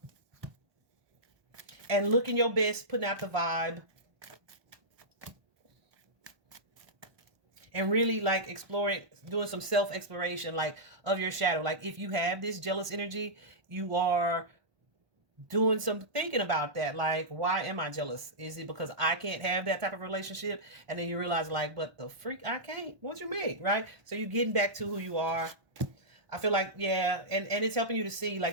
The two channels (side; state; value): left; late; 1.2 ms